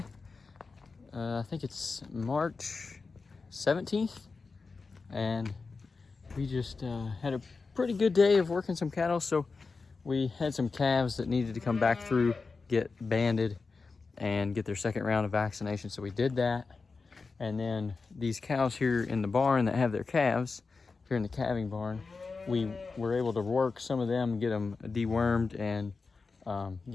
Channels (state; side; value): quieter; right; 4.3 dB